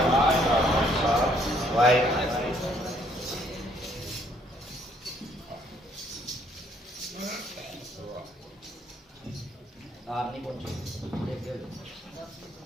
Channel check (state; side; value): normal; both; correlation 0.66